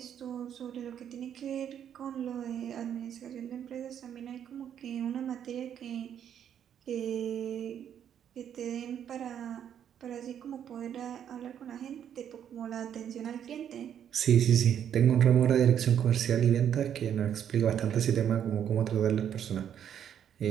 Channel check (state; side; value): quieter; left; 9.3 dB